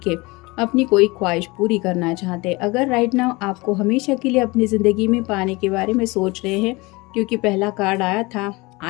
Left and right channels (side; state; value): right; quieter; 24.0 dB